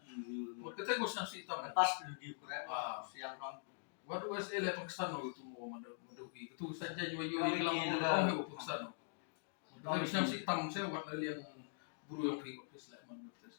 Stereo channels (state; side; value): silent; right; digital silence